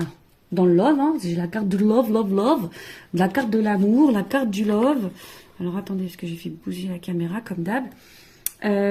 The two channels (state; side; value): identical; both; correlation 1.00